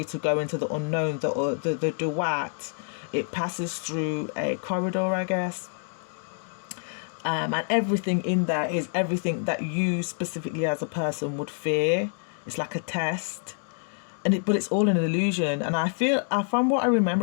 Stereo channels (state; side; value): silent; right; 60 dB below the other